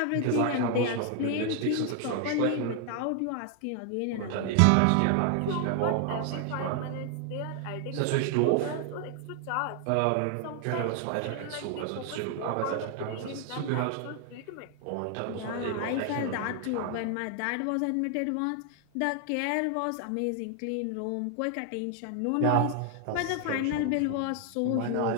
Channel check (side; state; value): both; different; correlation 0.00